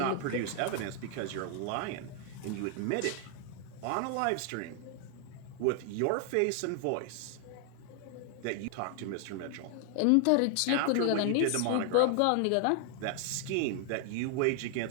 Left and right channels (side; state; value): both; different; correlation 0.00